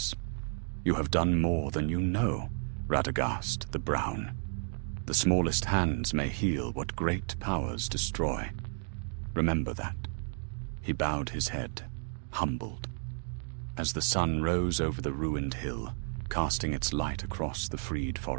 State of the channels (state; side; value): silent; left; 56 dB below the other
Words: "You have done more than you know, Radagast the Brown. The smallest hands may heal what great powers destroy. Remember that." He bowed his head, humbled. As the sun rose over the ruined hill, casting its light across the freed